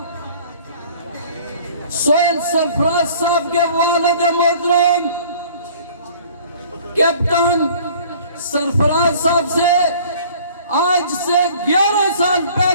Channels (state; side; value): inverted; both; correlation -0.51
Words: سائل سرفراز صاحب کے والد محترم کیپٹن سرفراز صاحب سے آج سے 11 سال